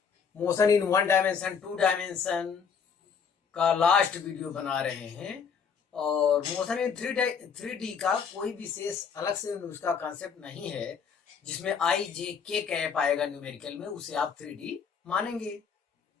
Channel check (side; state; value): right; quieter; 6.4 dB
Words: motion in one dimension, two dimension का लास्ट वीडियो बना रहे हैं। और मोशन इन थ्री डी का कोई विशेष अलग से उसका कॉन्सेप्ट नहीं है जिसमें आई जे के कैप आएगा न्यूमेरिकल में, उसे आप 3D मानेंगे।